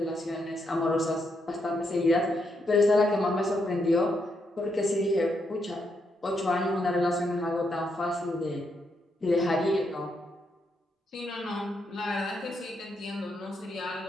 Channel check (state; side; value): normal; both; correlation 0.79